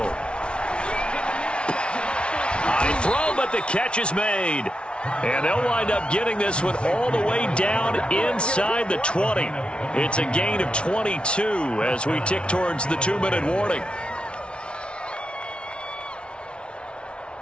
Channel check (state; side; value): late; right; 0.058 ms